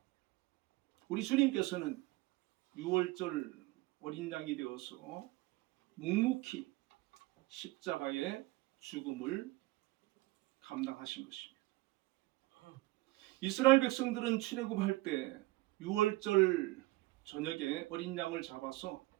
우리 주님께서는 유월절 어린 양이 되어서 묵묵히 십자가의 죽음을 감당하신 것입니다. 이스라엘 백성들은 출애굽할 때 유월절 저녁에 어린 양을 잡아서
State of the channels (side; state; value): left; quieter; 20.3 dB